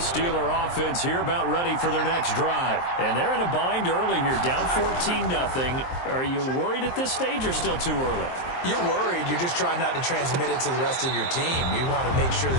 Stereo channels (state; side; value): late; right; 23 ms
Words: offense here about ready for their next drive. And they're in a bind early here, down 14-0. Are you worried at this stage or still too early? You're worried. You're just trying not to transmit it to the rest of your team. You want to make sure